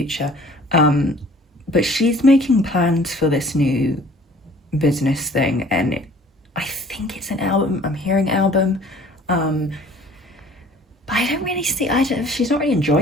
But she's making plans for this new business thing, and I think it's an album. I'm hearing album. But I don't really see, she's not really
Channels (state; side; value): normal; both; correlation 0.51